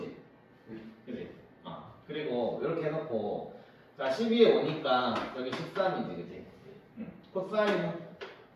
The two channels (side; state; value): both; identical; correlation 1.00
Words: 그지? 그리고 이렇게 해놓고 자 12에 오니까 여기 13이지, 그지? 코사인은